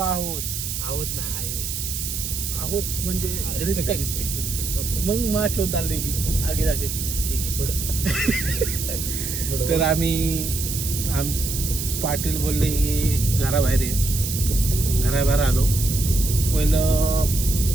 आहोत म्हणजे रिस्पेक्ट मग माच होत आले की आगे जागे ठीक आहे पुढं तर आम्ही पाटील बोलले की घराबाहेर ये. घराबाहेर आलो. पहिलं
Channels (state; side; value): noise; right; hiss, 4 dB below the sound